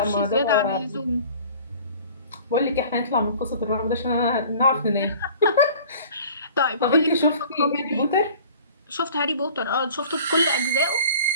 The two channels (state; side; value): inverted; both; correlation -0.47